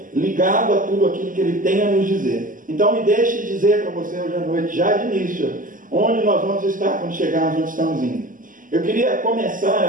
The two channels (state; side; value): late; left; 0.39 ms